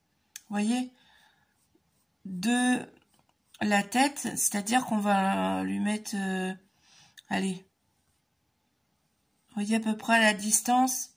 Vous voyez, de la tête, c'est-à-dire qu'on va lui mettre, allez, vous voyez à peu près la distance.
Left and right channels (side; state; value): both; identical; correlation 1.00